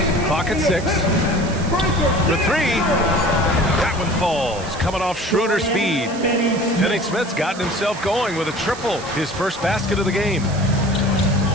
Clock at 6. For 3. That one falls, coming off Schroeder's feed. Finney Smith's gotten himself going with a triple, his first basket of the game.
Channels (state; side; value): noise; right; hiss, 15 dB below the sound